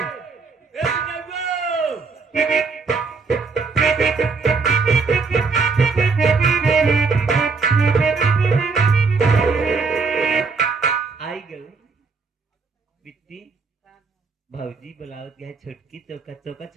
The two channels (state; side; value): quieter; left; 4.6 dB